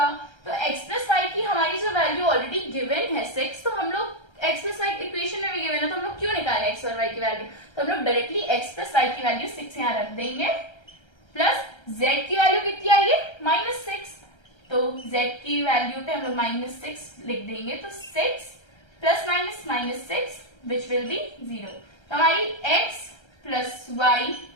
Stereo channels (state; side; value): late; right; 1.3 ms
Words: तो x प्लस वाई की हमारी जो वैल्यू ऑलरेडी गिवन है 6, तो हम लोग x प्लस वाई इक्वेशन में भी गिवन है, तो हम लोग क्यों निकाले x और y की वैल्यू, तो हम लोग डायरेक्टली x प्लस वाई की वैल्यू 6 यहाँ रख देंगे, प्लस z की वैल्यू कितनी आई है, माइनस 6, तो z की वैल्यू पे हम लोग माइनस 6 लिख देंगे, तो 6 plus minus minus 6 which will be 0। तो हमारी x plus y